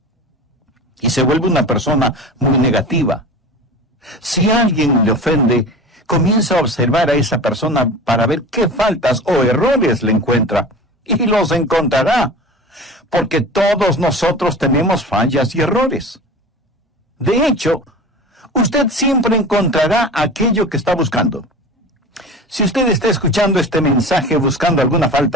Y se vuelve una persona muy negativa. Si alguien le ofende, comienza a observar a esa persona para ver qué faltas o errores le encuentra. Y los encontrará, porque todos nosotros tenemos fallas y errores. De hecho, usted siempre encontrará aquello que está buscando. Si usted está escuchando este mensaje buscando alguna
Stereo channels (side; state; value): both; normal; correlation 0.35